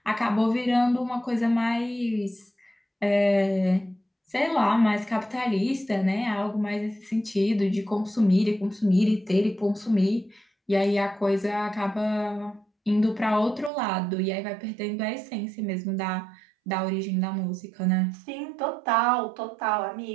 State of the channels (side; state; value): left; drops out; at 13.7 s